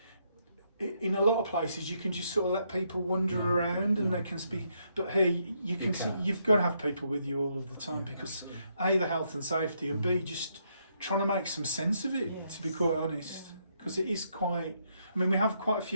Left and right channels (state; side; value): inverted; both; correlation -0.75